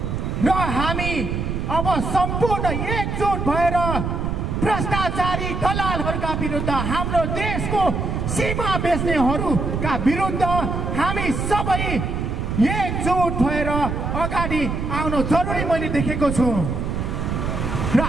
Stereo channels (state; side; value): noise; right; rumble, 2 dB below the sound